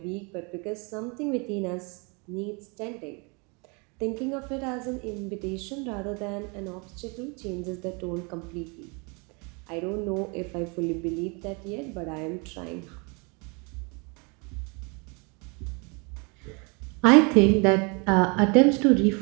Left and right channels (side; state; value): left; quieter; 31.7 dB